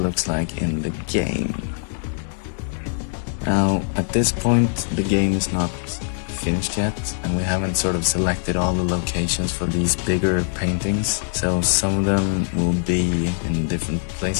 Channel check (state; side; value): silent; right; digital silence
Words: like in the game. Now, at this point, the game is not finished yet, and we haven't sort of selected all the locations for these bigger paintings. So some of them will be in different